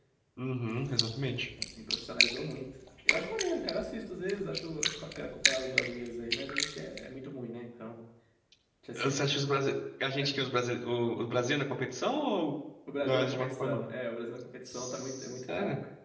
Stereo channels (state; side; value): identical; both; correlation 1.00